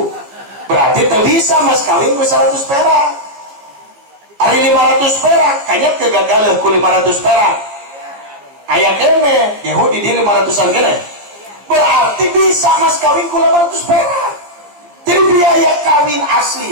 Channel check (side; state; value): left; late; 14 ms